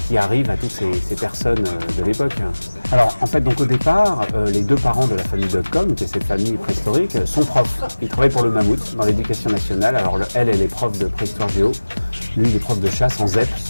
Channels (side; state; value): both; inverted; correlation -1.00